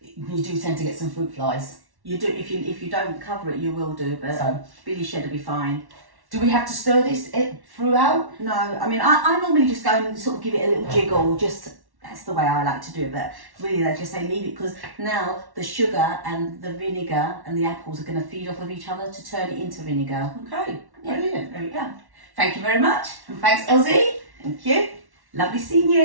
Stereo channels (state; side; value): late; left; 1.1 ms